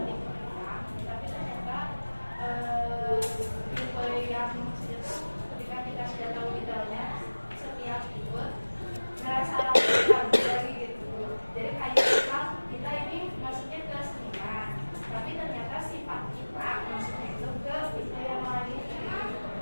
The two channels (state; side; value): inverted; both; correlation -1.00